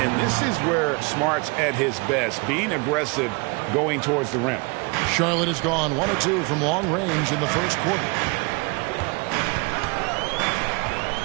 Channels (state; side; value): quieter; left; 29.4 dB